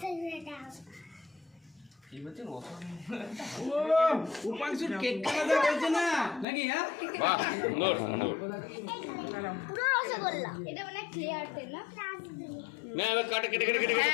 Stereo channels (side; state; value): right; drops out; at 6.5 s